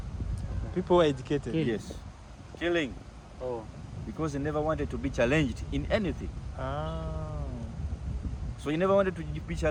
People were educated. Yes, killing, Oh. because he never wanted to be challenged in anything. Ah. So he never wanted to be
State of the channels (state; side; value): identical; both; correlation 1.00